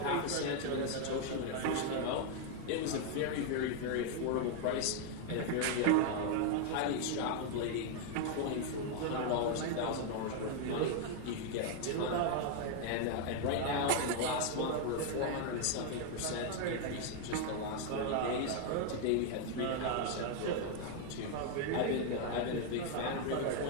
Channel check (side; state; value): both; different; correlation 0.00